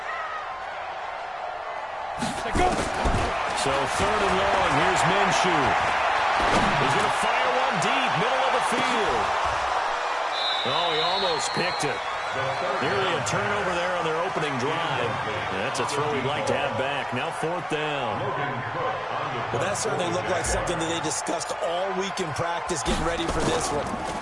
So third and long, here's Minshew. He's going to fire one deep, middle of the field. Oh, he almost picked it. Nearly a turnover there on their opening drive. That's a throw he'd like to have back. Now fourth down. Well, that certainly looked like something that they discussed all week in practice, getting ready for this one.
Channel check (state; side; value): identical; both; correlation 1.00